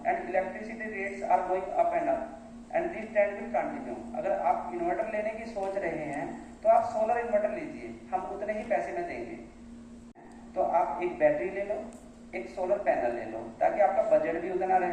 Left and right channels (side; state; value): both; identical; correlation 1.00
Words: and electricity rates are going up and this trend will continue. अगर आप इन्वर्टर लेने की सोच रहे हैं तो आप सोलर इन्वर्टर लीजिए, हम उतने ही पैसे में देंगे। तो आप एक बैटरी ले लो, एक सोलर पैनल ले लो, ताकि आपका बजट भी उतना